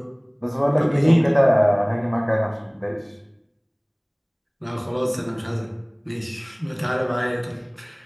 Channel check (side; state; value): both; identical; correlation 1.00